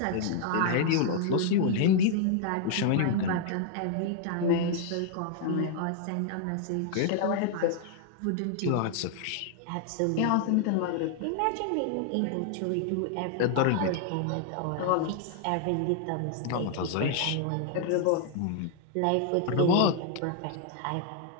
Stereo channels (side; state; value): both; different; correlation 0.00